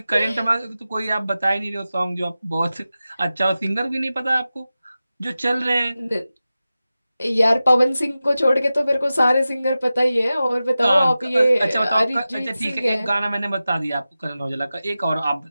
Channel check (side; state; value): both; inverted; correlation -0.94